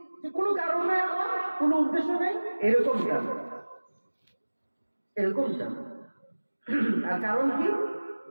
যে কোনো কারণ নাই, আমার কোনো উদ্দেশ্য নেই? এরকম জানো, এরকম জানো। আর কারণ কি?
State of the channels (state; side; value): inverted; both; correlation -1.00